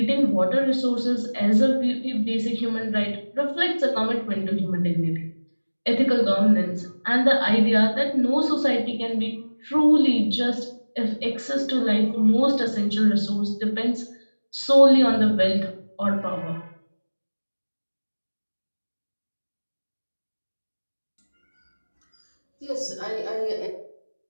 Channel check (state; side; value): inverted; both; correlation -1.00